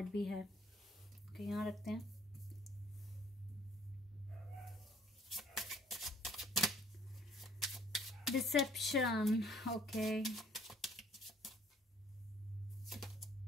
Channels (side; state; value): both; normal; correlation 0.60